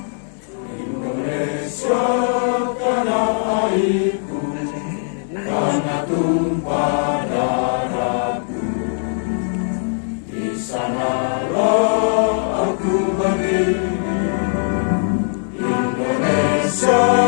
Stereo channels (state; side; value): silent; right; 66 dB below the other